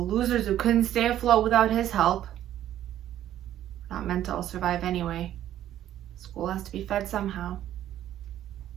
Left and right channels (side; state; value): left; quieter; 12.0 dB